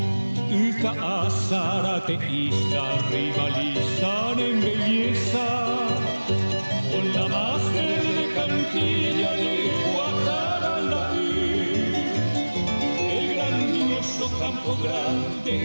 Zárate y rivalizan en belleza con la más verde cantilla de Guataralaí, el grandioso Campo Grande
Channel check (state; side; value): inverted; both; correlation -1.00